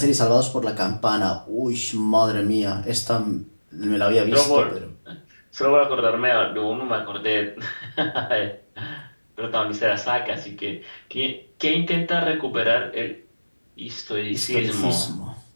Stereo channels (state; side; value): inverted; both; correlation -1.00